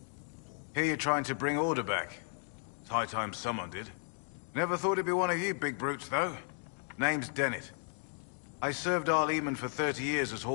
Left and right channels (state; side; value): silent; right; 55 dB below the other